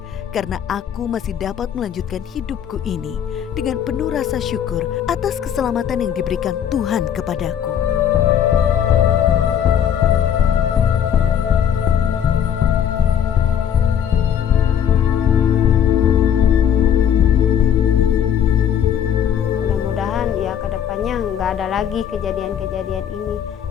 karena aku masih dapat melanjutkan hidupku ini dengan penuh rasa syukur atas keselamatan yang diberikan Tuhan kepadaku. Mudah-mudahan ya ke depannya nggak ada lagi kejadian-kejadian ini.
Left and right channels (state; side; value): quieter; right; 9.0 dB